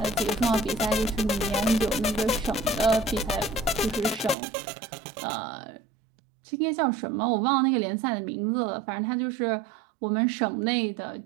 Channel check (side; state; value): left; drops out; at 4.4 s